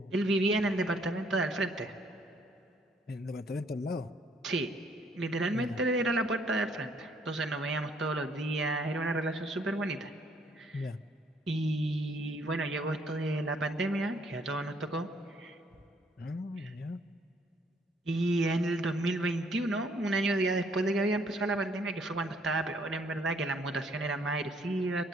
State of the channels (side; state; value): both; normal; correlation 0.66